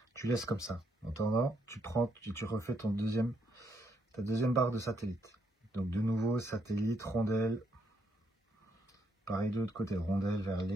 Tu laisses comme ça. En attendant, tu refais ta deuxième barre de satellite. Donc de nouveau, satellite, rondelle. Pareil de l'autre côté, rondelle vers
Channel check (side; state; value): both; normal; correlation 0.75